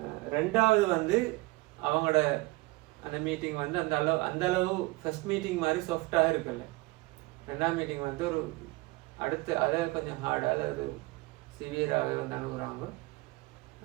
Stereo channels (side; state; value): left; quieter; 22.4 dB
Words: ரெண்டாவது அவங்களோட அந்த மீட்டிங் அந்த அளவு ஃபர்ஸ்ட் மீட்டிங் மாதிரி சாஃப்டாக இருக்குல்ல. ரெண்டாவது மீட்டிங் ஒரு அடுத்து அதை கொஞ்சம் ஹார்டாக அல்லது சிவியராகவே அணுகுறாங்க.